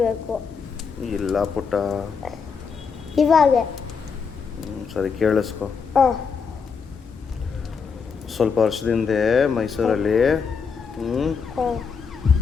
ಇಲ್ಲ ಪುಟ್ಟ. ಇವಾಗ ಸರಿ ಕೇಳಿಸ್ಕೊ. ಸ್ವಲ್ಪ ವರ್ಷದಿಂದ ಮೈಸೂರಲ್ಲಿ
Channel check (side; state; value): right; quieter; 5.8 dB